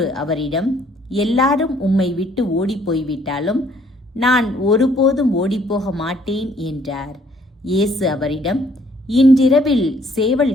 அவரிடம், எல்லாரும் உம்மை விட்டு ஓடிப்போய்விட்டாலும் நான் ஒருபோதும் ஓடிப்போக மாட்டேன் என்றார். இயேசு அவரிடம், இன்றிரவில்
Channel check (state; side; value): normal; both; correlation 0.63